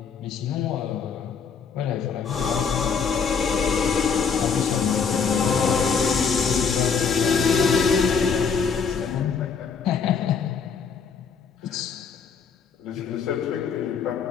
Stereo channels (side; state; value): right; quieter; 5.9 dB